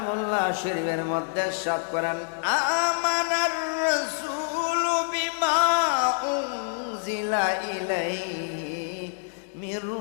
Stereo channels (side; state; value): right; silent; digital silence